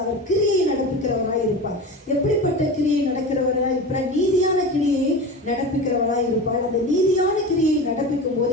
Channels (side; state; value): both; normal; correlation 0.29